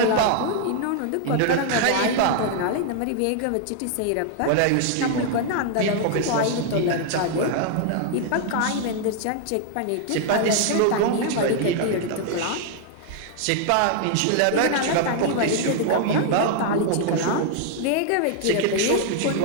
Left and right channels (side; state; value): both; different; correlation 0.00